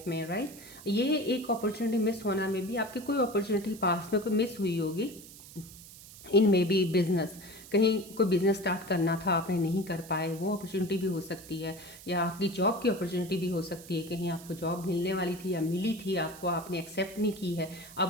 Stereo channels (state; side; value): noise; right; hiss, 18 dB below the sound